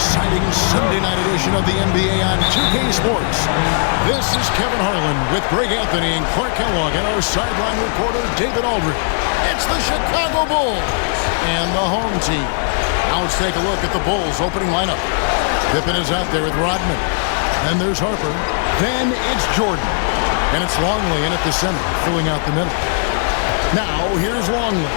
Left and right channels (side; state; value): right; silent; 68 dB below the other